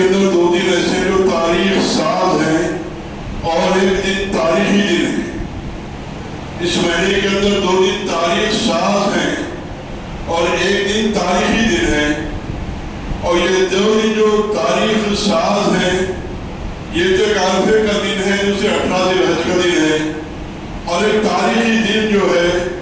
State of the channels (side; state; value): both; identical; correlation 1.00